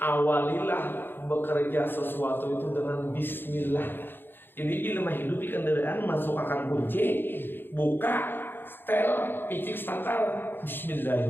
bekerja sesuatu itu dengan Bismillah. Jadi ilmu hidup di kendaraan masuk akan kunci, buka, setel, picik starter,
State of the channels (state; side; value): late; right; 0.099 ms